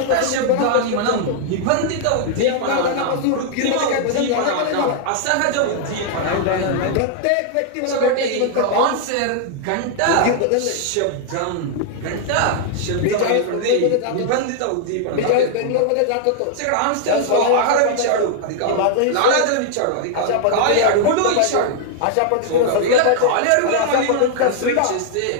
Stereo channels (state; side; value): different; both; correlation -0.01